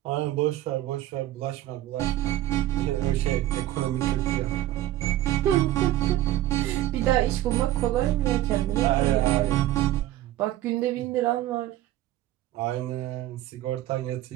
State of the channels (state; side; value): quieter; left; 14.5 dB